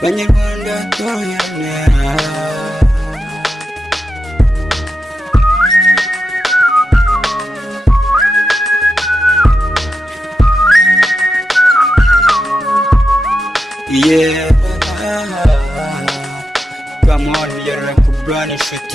banyarwanda toroherane come on, you're like a brand new shit,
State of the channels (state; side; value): normal; both; correlation 0.88